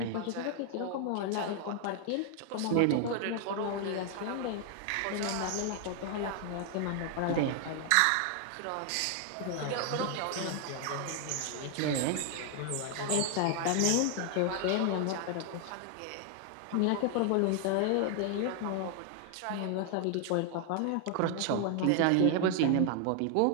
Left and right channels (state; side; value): different; both; correlation 0.00